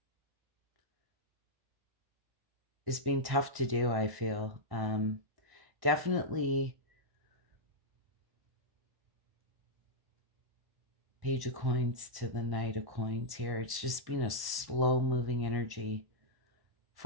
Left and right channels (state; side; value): late; left; 1.1 ms